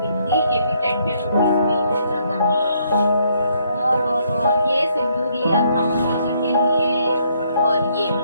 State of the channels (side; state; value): both; inverted; correlation -0.71